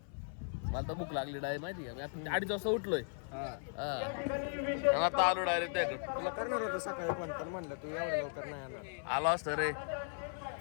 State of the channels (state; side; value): silent; right; 53 dB below the other